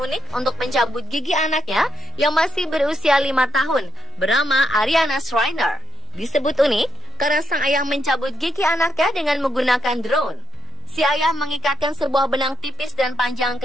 unik untuk mencabut gigi anaknya yang masih berusia 5 tahun, bernama Ariana Schreiner. Disebut unik karena sang ayah mencabut gigi anaknya dengan menggunakan drone. Si ayah mengikatkan sebuah benang tipis dan panjang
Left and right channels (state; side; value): normal; both; correlation 0.77